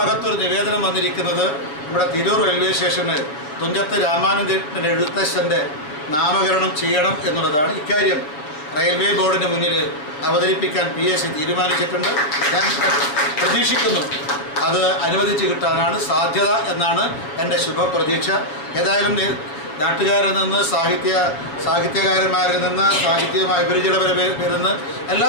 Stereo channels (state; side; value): late; right; 6.9 ms